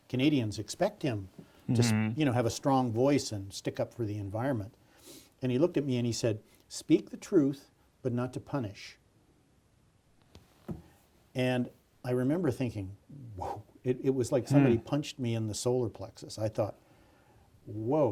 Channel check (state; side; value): identical; both; correlation 1.00